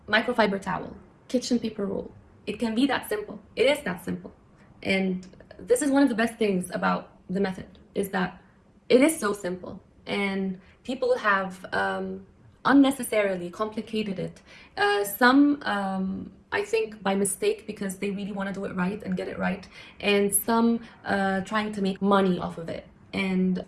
microfiber towel, kitchen paper roll. It can be that simple. It is that simple. And this is one of the best things about the method, is that it is so simple. And people have unnecessarily complicated it. Some, I think, by mistake, because they really want to do it right and get it right. And some trying to make money off of it. And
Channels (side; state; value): both; identical; correlation 1.00